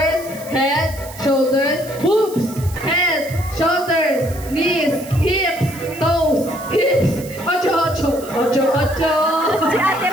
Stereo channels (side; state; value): right; noise; hiss, 17 dB below the sound